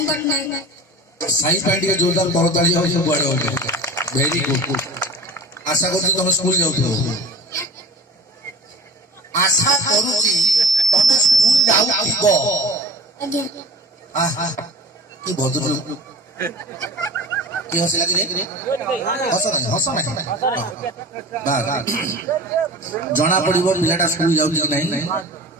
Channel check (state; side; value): normal; both; correlation 0.38